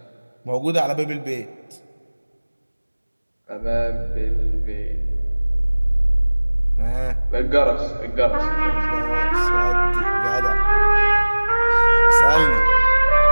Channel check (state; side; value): inverted; both; correlation -1.00